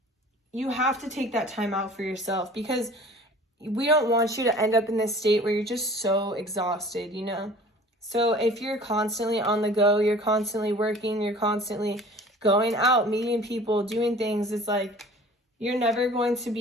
you have to take that time out for yourself, because we don't want you to end up in this state where you're just so exhausted, you know? So if you're constantly on the go, you're constantly working, you're constantly going out, meeting people, doing things, it's like you're never going to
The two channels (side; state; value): both; normal; correlation 0.46